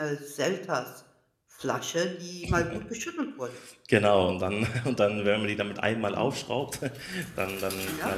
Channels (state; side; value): identical; both; correlation 1.00